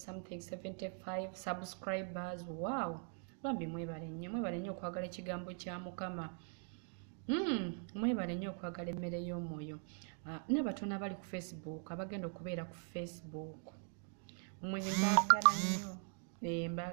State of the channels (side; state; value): left; silent; 50 dB below the other